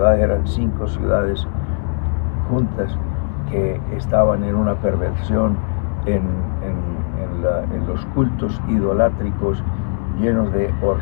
eran 5 ciudades juntas que estaban en una perversión, en los cultos idolátricos, llenos de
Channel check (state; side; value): silent; right; 66 dB below the other